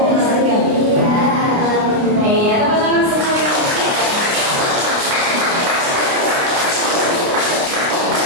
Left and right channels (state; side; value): late; left; 29 ms